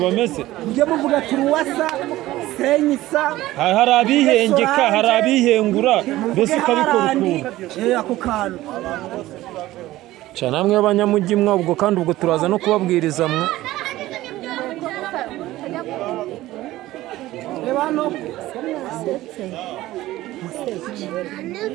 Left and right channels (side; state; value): left; quieter; 16.4 dB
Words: mujye muvuga turuwasa senyisa Hari abihengeka, hari abihengura mbese ukabikora ukuntu. ako kantu Cyane namwe abanyamujyi mwa ubwo kandi ubwo turaza no kubabwiriza mwe. reba hano